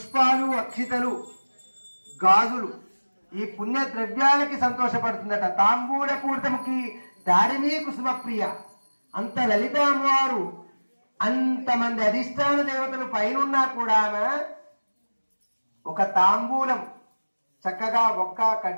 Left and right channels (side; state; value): both; inverted; correlation -1.00